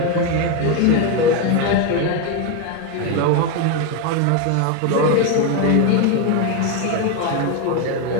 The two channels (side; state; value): both; different; correlation 0.02